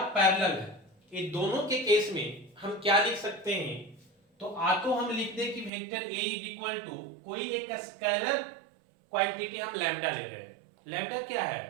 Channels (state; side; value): drops out; left; at 5.7 s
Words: पैरेलल है, ये दोनों के केस में हम क्या लिख सकते हैं, तो तो हम लिख दें कि vector A is equal to कोई एक स्केलर क्वांटिटी हम लैम्डा ले रहे हैं। लैम्डा क्या